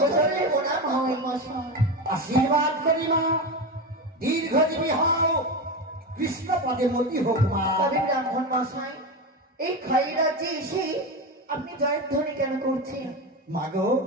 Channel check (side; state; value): both; normal; correlation 0.19